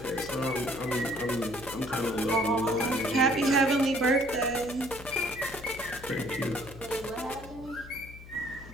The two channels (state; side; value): noise; left; hum, 16 dB below the sound